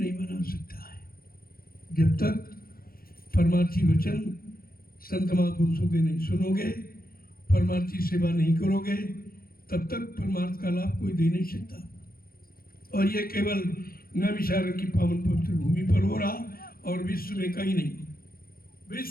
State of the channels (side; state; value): right; late; 0.43 ms